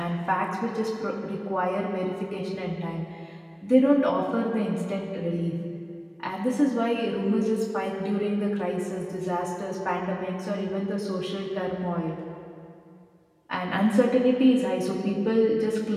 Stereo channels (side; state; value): both; identical; correlation 1.00